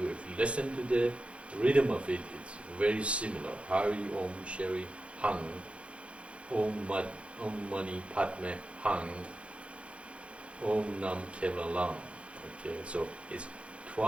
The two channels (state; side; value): late; left; 0.060 ms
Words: listen to the rhythm of it, it's very similar. Hari Om Shri Hang, Om Mani Padme Hang, Om Nam Kevalam. Okay, so it's